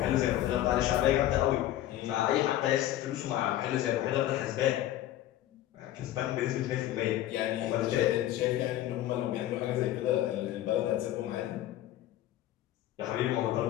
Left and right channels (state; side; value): quieter; right; 13.4 dB